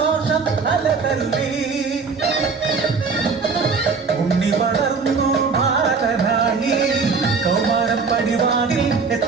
അലതല്ലി ഉണ്ണി വളർന്നു ബാലനായി കൗമാരം പടിവാതിൽ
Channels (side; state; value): left; quieter; 4.9 dB